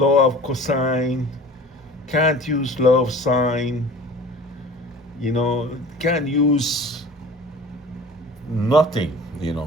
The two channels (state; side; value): normal; both; correlation 0.42